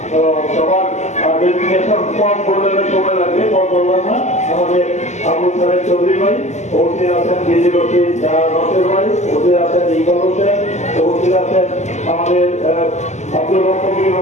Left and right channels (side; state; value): right; late; 0.33 ms